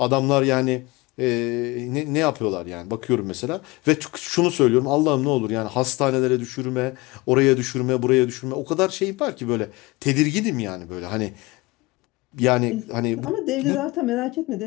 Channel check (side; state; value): right; quieter; 22.9 dB